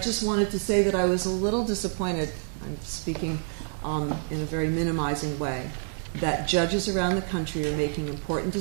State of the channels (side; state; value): left; silent; digital silence